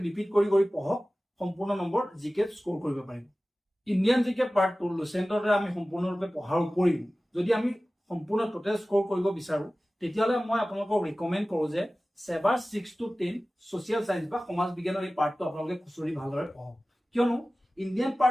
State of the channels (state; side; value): normal; both; correlation 0.97